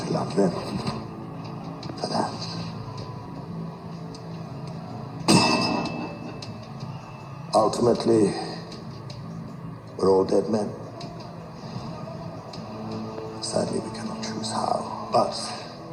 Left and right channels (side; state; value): both; identical; correlation 1.00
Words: love them for that. Ultimately, we're all dead men. Sadly, we cannot choose how, but